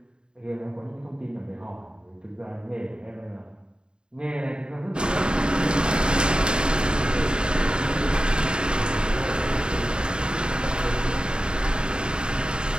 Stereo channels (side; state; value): left; late; 0.049 ms